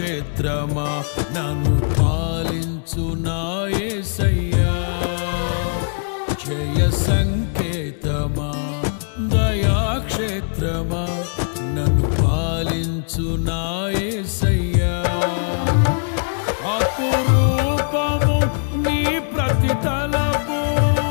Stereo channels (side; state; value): right; silent; digital silence